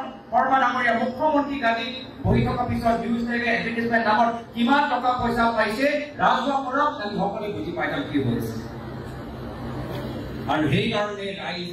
শৰ্মা ডাঙৰীয়া মুখ্যমন্ত্ৰী গাদী বহি থকা পিছত নিউজ টেগে এডভাৰ্টাইজমেন্ট নামত কিমান টকা পয়সা পাইছে ৰাজহুৱা কৰক আমি সকলোৱে বুজি পাই যাম কি হৈছে আৰু সেই কাৰণে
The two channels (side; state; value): both; identical; correlation 1.00